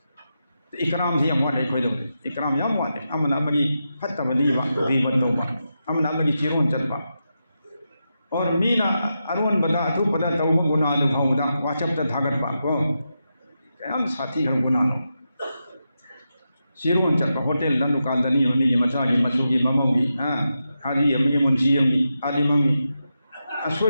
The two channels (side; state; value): both; inverted; correlation -0.88